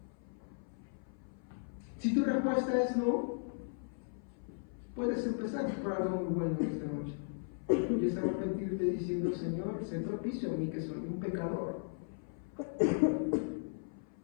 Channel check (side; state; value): right; silent; 53 dB below the other